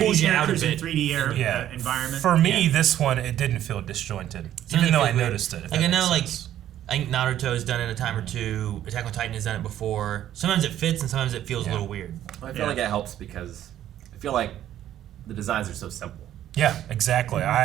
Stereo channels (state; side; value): quieter; left; 11.8 dB